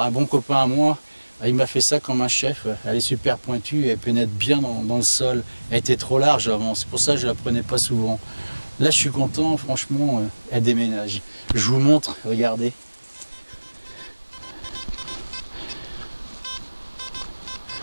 un bon copain à moi. Il m'a fait ça comme un chef, elle est super pointue, elle pénètre bien dans le sol. Elle était trop large avant, c'est pour ça que je la prenais pas souvent. Là je suis content, franchement, elle déménage. Je vous montre, regardez.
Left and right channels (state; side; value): inverted; both; correlation -1.00